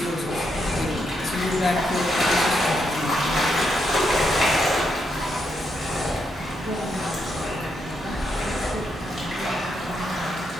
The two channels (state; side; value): normal; both; correlation 0.80